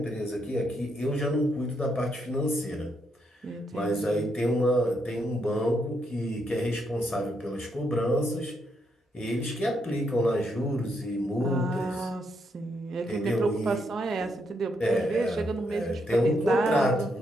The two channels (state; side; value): normal; both; correlation 0.78